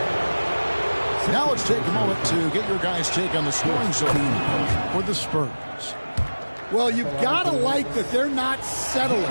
Now let's take a moment to get your guys' take on the scoring so far for the Spurs. Well, you've got to like that they're not settling.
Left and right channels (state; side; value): inverted; both; correlation -1.00